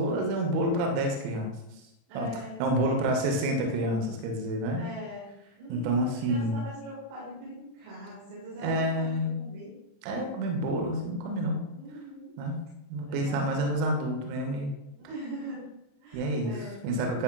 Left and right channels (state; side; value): late; left; 36 ms